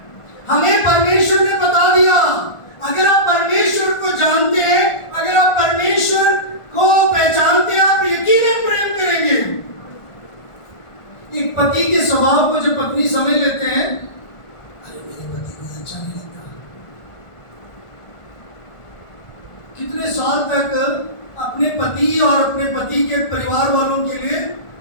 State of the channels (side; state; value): right; late; 1.4 ms